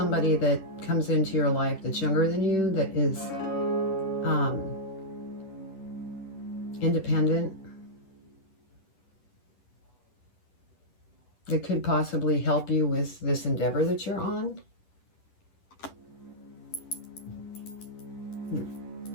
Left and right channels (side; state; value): right; late; 10 ms